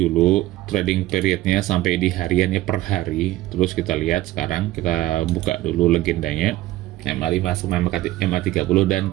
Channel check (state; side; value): quieter; left; 16.0 dB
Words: trading periodnya sampai di hariannya per hari. Terus kita lihat sekarang, kita buka dulu legendanya. MA5 sama MA30 dan